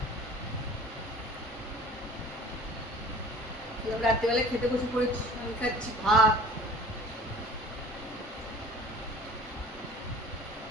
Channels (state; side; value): normal; both; correlation 0.46